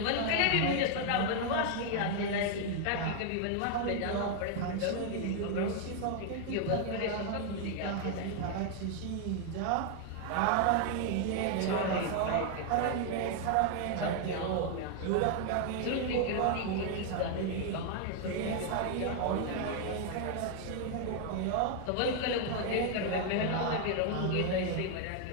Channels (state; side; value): different; both; correlation 0.00